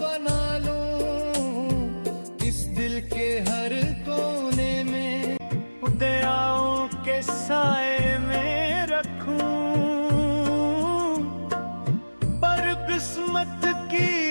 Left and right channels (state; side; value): inverted; both; correlation -1.00